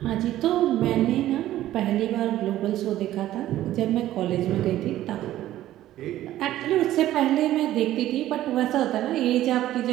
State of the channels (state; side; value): quieter; left; 13.8 dB